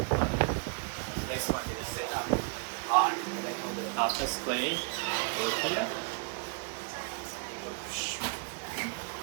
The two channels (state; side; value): quieter; left; 37.5 dB